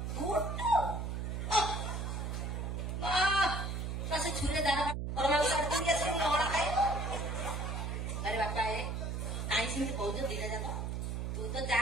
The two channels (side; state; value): right; noise; hum, 3 dB below the sound